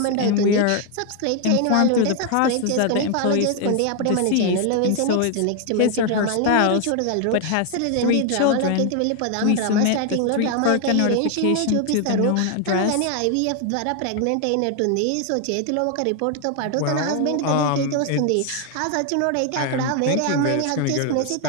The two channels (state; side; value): different; both; correlation 0.01